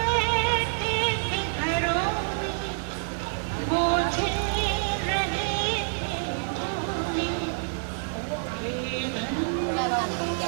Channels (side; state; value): left; silent; digital silence